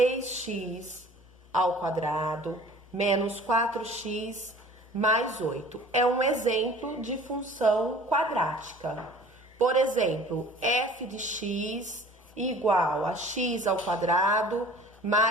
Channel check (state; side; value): normal; both; correlation 0.47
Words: ao quadrado menos 4x mais 8. É um exemplo de função quadrática. Por exemplo, f de x igual a x ao quadrado